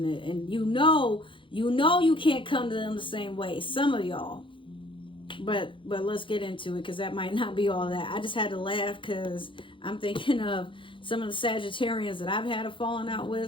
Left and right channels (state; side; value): late; right; 0.25 ms